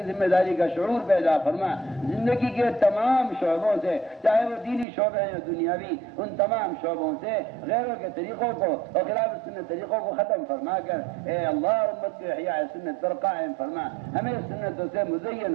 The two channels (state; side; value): drops out; left; at 4.9 s